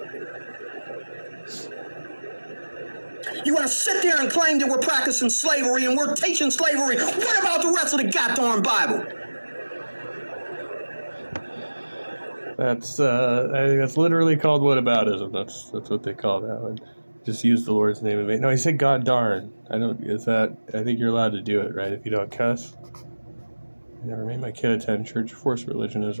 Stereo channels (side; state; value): both; inverted; correlation -1.00